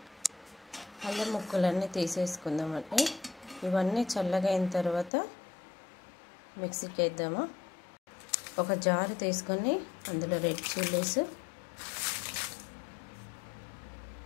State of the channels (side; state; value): right; drops out; at 5.1 s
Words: అల్లం ముక్కలన్నీ తీసేసుకుందామండి. ఇవన్నీ చల్లగా అయిన తర్వాత మిక్సీకి వేద్దాము. ఒక జారు తీసుకొని అందులో రెడ్ చిల్లీస్